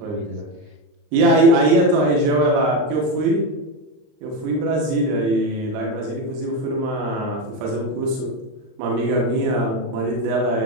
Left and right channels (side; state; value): left; late; 39 ms